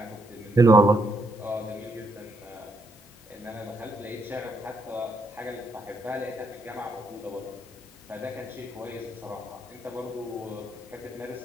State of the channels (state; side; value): normal; both; correlation 0.75